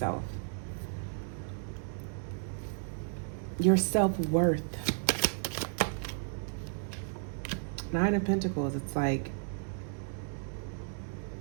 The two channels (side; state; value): left; silent; 55 dB below the other